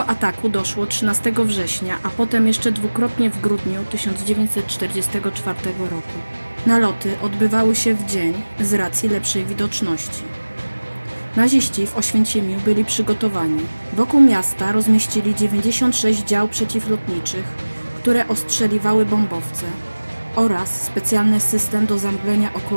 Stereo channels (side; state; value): both; inverted; correlation -1.00